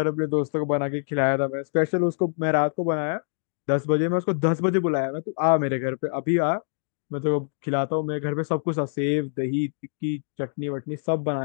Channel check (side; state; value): right; silent; digital silence